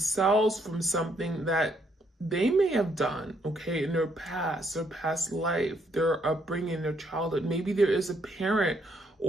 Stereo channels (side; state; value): both; normal; correlation 0.71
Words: from something that they may have done, okay, in their past life, their upbringing, their childhood. Maybe there is a parent